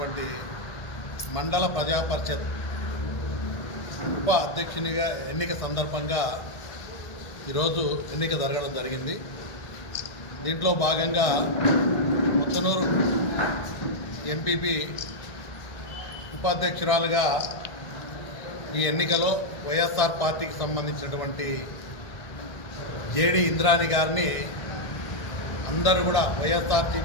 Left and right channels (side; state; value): right; late; 1.6 ms